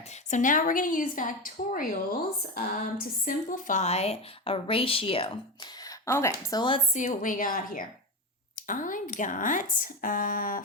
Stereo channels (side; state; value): both; normal; correlation 0.18